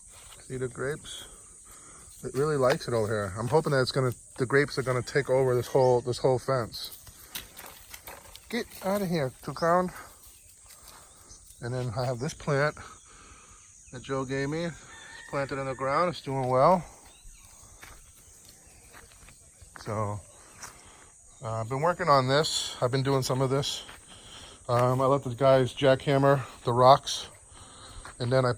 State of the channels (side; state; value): both; identical; correlation 1.00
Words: See the grapes? It really likes it over here. I'm hoping that the grapes are gonna take over this whole fence. Get out of here, Toucan. And then I have this plant that Joe gave me. It's planted in the ground. It's doing well. So I've been working on this. I've been doing some of this. I let the guys jackhammer the rocks, and then I